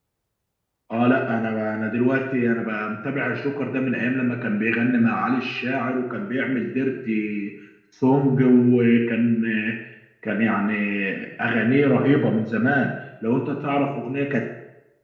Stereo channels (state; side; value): identical; both; correlation 1.00